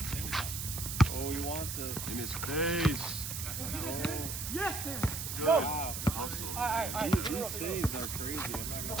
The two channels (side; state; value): right; noise; hiss, 5 dB below the sound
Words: Oh, he wants it. In his face. Yes, Dan. Good Wow. hustle. These saves are crazy. I'm not